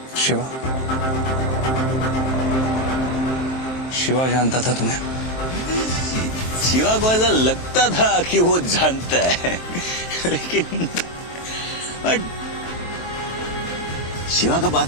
शिवा, शिवा जानता था तुम्हें? शिवा को ऐसा लगता था कि वो जानता है, लेकिन बट शिवा का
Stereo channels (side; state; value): right; late; 23 ms